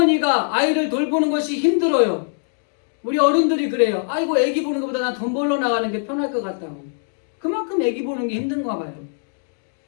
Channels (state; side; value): silent; right; digital silence